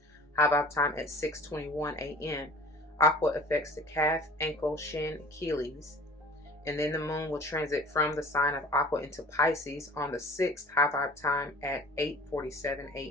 high vibe time at 6:21 AM. Aqua affects the calf, ankle, shin, Achilles. And then the moon will transit from the sign of Aqua into Pisces on the 6th, high vibe time at 8:47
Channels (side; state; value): both; normal; correlation 0.45